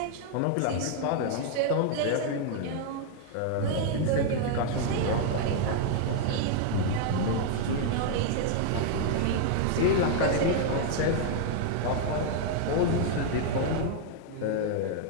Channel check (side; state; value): both; different; correlation 0.00